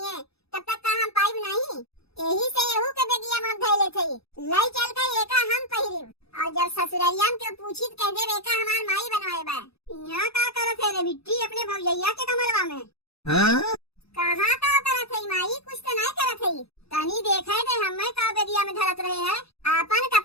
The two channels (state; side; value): late; right; 0.78 ms